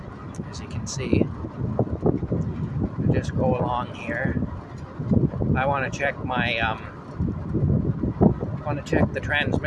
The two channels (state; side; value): identical; both; correlation 1.00